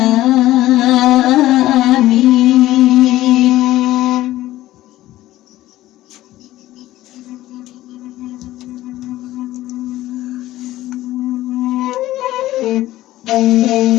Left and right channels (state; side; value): quieter; right; 15.4 dB